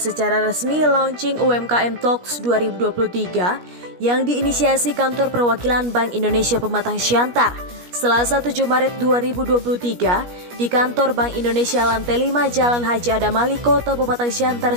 resmi launching UMKM Talks 2023 yang diinisiasi Kantor Perwakilan Bank Indonesia Pematang Siantar Selasa 7 Maret 2023 di Kantor Bank Indonesia Lantai 5 Jalan Haji Adam Ali, Kota Pematang Siantar,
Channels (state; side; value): late; left; 17 ms